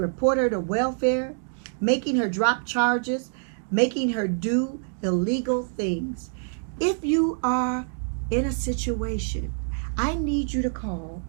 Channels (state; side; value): silent; left; digital silence